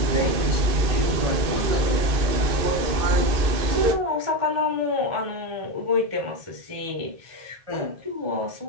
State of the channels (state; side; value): late; left; 2.5 ms